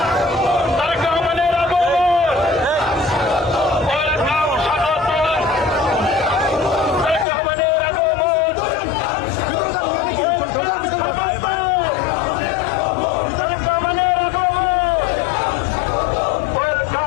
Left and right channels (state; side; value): drops out; right; at 7.2 s